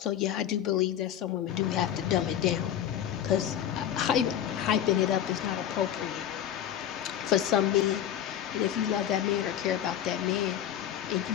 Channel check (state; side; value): quieter; right; 10.4 dB